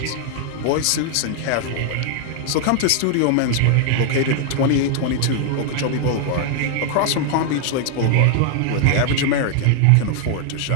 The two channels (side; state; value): both; different; correlation 0.00